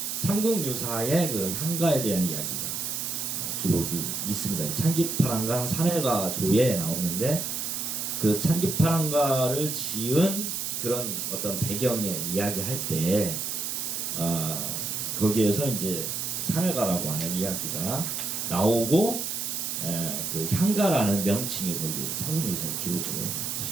삼국유사의 그 향가에 대한 이야기가 기록이 있습니다. 찬기파랑강 산해가조에 나오는데 그 찬기파랑가를 지은 그런 어떤 배경의 이야기할 때 거기에서 이제 산해가라고 하는 이야기가 나오고 그 향가라는 명칭이 거기 삼국유사의 기록으로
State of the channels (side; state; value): right; noise; hiss, 2 dB below the sound